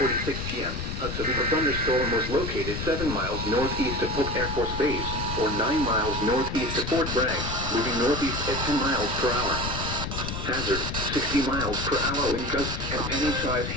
p.m., a severe thunderstorm was located 7 miles northeast of Hook Air Force Base, or 9 miles northeast of Fort Bragg, moving northeast at 10 miles per hour. Hazard, 60 miles per hour in gusts and penny-sized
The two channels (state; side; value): noise; left; rumble, 5 dB below the sound